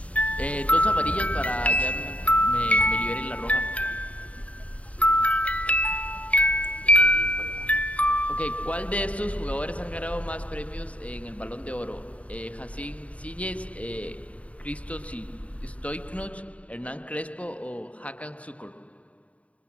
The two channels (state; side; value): late; right; 0.066 ms